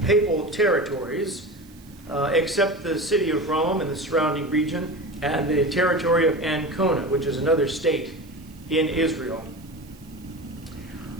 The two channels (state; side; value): noise; right; hiss, 26 dB below the sound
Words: papal territories except the city of Rome and the surrounding region and the territory of Ancona, which is another state in Israel.